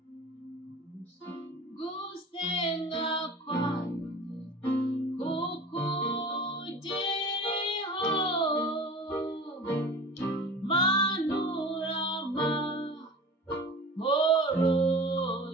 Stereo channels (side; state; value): both; normal; correlation 0.38